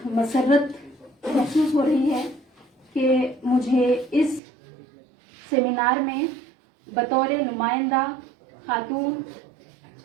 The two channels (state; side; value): drops out; left; at 4.4 s